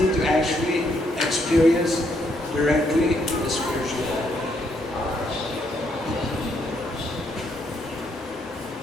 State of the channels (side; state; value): both; normal; correlation 0.73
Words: to actually experience directly the spiritual world.